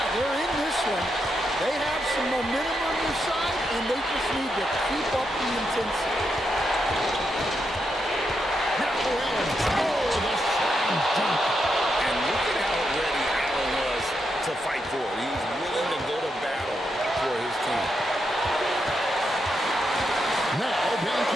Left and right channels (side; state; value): both; normal; correlation 0.83